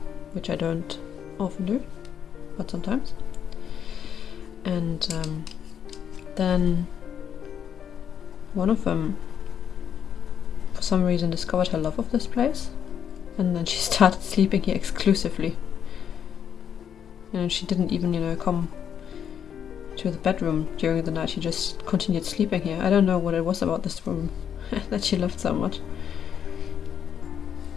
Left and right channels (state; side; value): quieter; right; 8.5 dB